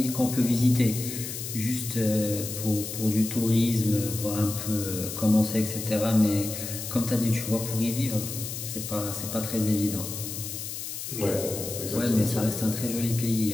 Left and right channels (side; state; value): left; noise; hiss, 7 dB below the sound